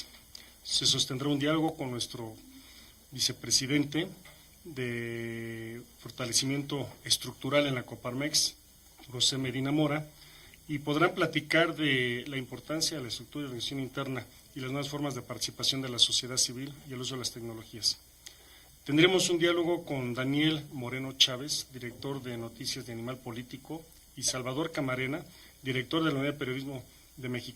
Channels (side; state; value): both; identical; correlation 1.00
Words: Se sostendrá un diálogo con nuestro vicepresidente de fortalecimiento estructural en la Coparmex, José Medina Mora, y podrán platicar de la importancia de la estructura y organización interna y las nuevas formas de participación de la sociedad civil y el uso de las tecnologías. Tendremos un diálogo con Daniel Moreno Chávez, director de Noticias de Animal Político, y Salvador Camarena, director de la Unidad de Periodismo de